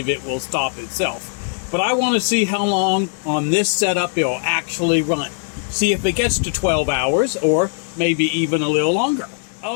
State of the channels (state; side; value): silent; right; digital silence